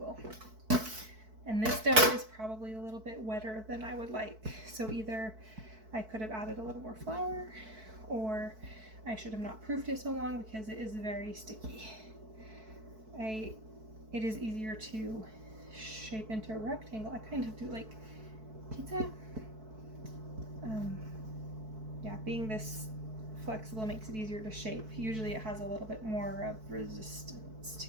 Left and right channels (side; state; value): left; late; 4.6 ms